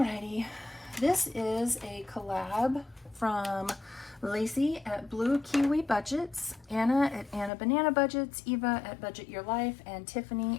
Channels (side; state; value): right; drops out; at 7.5 s